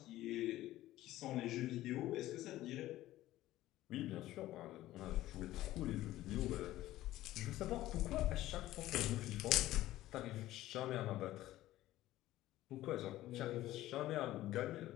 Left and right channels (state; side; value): quieter; right; 15.3 dB